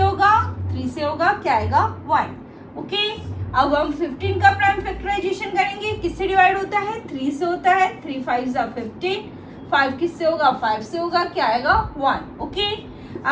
3 से होगा, क्या आएगा 1। ओके, अब हम 15 का प्राइम फैक्टराइजेशन करेंगे। किससे डिवाइड होता है, 3 से होता है। 3 5 15। 5 किससे होगा, 5 से होगा, क्या आएगा 1। ओके,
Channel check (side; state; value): both; identical; correlation 1.00